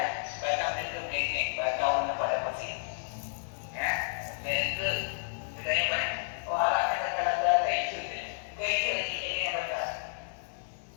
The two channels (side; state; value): right; silent; 57 dB below the other